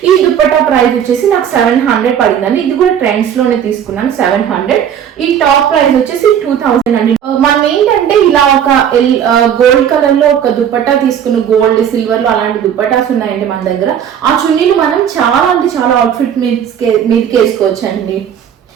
ఈ దుప్పట్టా ప్రైస్ వచ్చేసి నాకు 700 పడిందండి. ఇది కూడా ట్రెండ్స్ లోనే తీసుకున్నాను 700. ఈ టాప్ ప్రైస్ వచ్చేసి 2000 అండి. మనం ఏంటంటే ఇలా ఒక గోల్డ్ కలర్ లో ఒక దుప్పట్టా తీసుకున్న, గోల్డ్ సిల్వర్ లో అలాంటి దుప్పటాస్ ఉన్నాయండి మన దగ్గర. ఆ చున్నీలు మనం చాలా అంటే చాలా అవుట్ఫిట్ మీదకి వేసుకోవచ్చు అండి.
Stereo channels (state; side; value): quieter; left; 9.0 dB